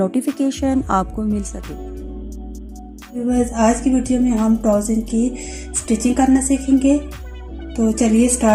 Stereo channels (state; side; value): identical; both; correlation 1.00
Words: आपको मिल सके। बस आज की वीडियो में हम ट्राउज़र की स्टिचिंग करना सीखेंगे, तो चलिए